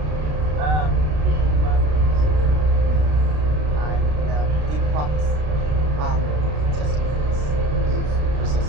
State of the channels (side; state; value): left; late; 33 ms